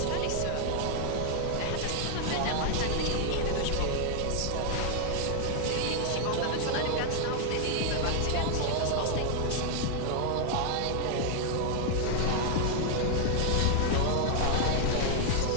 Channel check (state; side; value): different; both; correlation 0.00